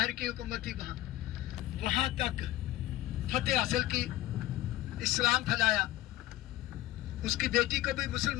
की हुकूमत थी, वहां तक फतेह हासिल की, इस्लाम फैलाया। उसकी बेटी को भी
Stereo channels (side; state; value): right; quieter; 15.8 dB